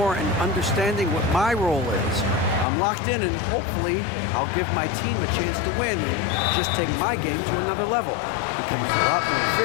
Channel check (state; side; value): drops out; right; at 2.7 s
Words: and understanding what my role is. I'm locked in and hopefully I'll give my team a chance to win and just take my game to another level, becoming a lot more